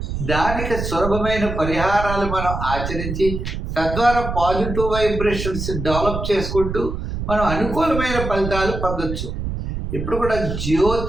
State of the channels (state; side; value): noise; right; rumble, 5 dB below the sound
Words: దానికి సులభమైన పరిహారాలు మనం ఆచరించి తద్వారా పాజిటివ్ వైబ్రేషన్స్ డెవలప్ చేసుకుంటూ మనం అనుకూలమైన ఫలితాలు పొందొచ్చు. ఇప్పుడు కూడా